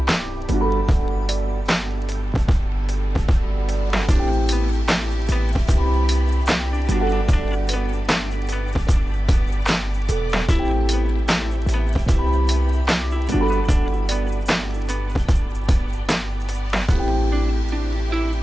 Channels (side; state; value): both; normal; correlation 0.95